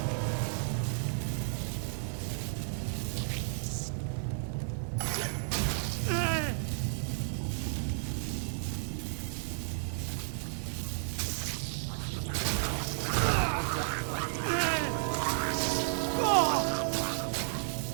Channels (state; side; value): silent; left; digital silence